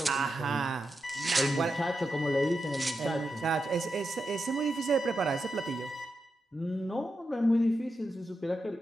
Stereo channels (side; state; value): both; normal; correlation 0.87